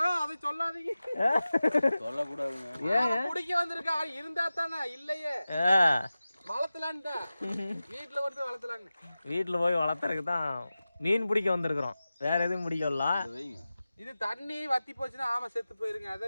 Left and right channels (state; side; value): inverted; both; correlation -0.96